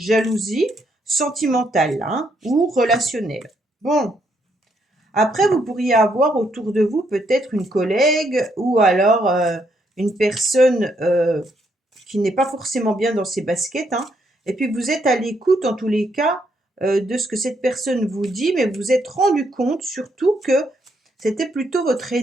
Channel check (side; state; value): both; normal; correlation 0.74